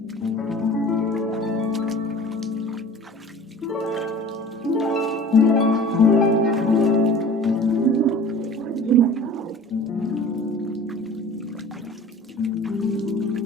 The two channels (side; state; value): both; normal; correlation 0.43